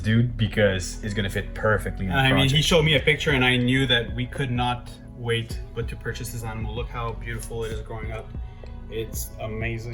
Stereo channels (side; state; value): both; identical; correlation 1.00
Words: dude because it's gonna fit perfectly in the project. He showed me a picture and I knew that we could not wait but to purchase this animal. Look how beautiful it is growing up. It's